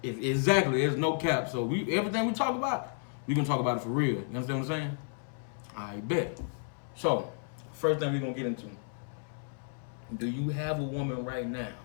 Exactly. There's no cap. So everything we talk about, we going to talk about it for real. You understand what I'm saying? I bet. So, first thing we're going to get into. Do you have a woman right now?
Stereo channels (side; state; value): right; silent; 56 dB below the other